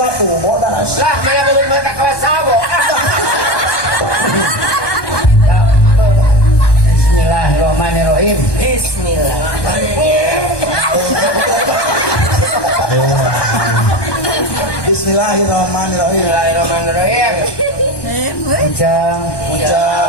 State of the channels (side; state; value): right; late; 1.2 ms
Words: tuh bodas. Lah, mana belum mata kawas sabo. Bismillahirrahmanirrahim. Bismillahirrahmanirrahim. Ujang